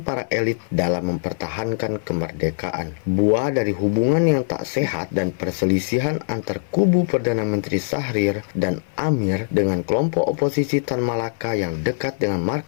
para elit dalam mempertahankan kemerdekaan. Buah dari hubungan yang tak sehat dan perselisihan antar kubu Perdana Menteri Syahrir dan Amir dengan kelompok oposisi Tan Malaka yang dekat dengan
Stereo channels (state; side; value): silent; right; 60 dB below the other